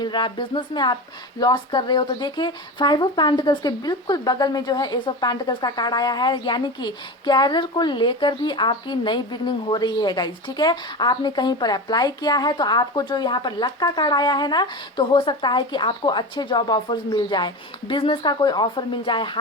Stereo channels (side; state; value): both; normal; correlation 0.26